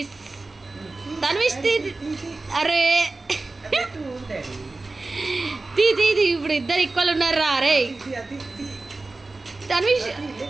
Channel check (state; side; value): quieter; left; 3.3 dB